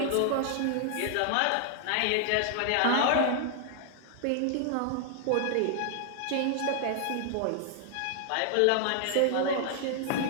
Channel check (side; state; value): both; different; correlation 0.00